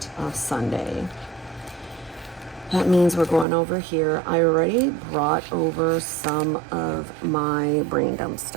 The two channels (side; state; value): left; drops out; at 3.5 s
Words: of Sunday. That means we're going over here. I already brought over some of my brain dump